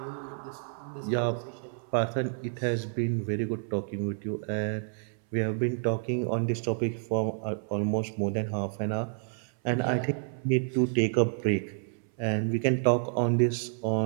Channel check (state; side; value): silent; left; 58 dB below the other